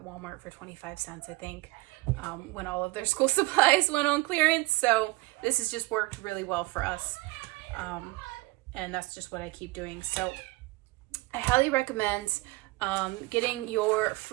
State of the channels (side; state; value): left; quieter; 22.1 dB